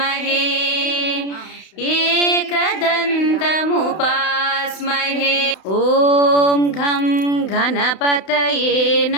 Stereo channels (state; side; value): late; right; 32 ms